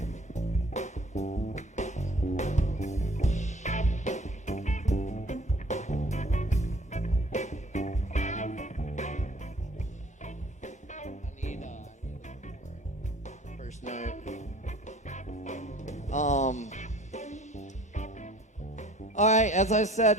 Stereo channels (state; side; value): normal; both; correlation 0.53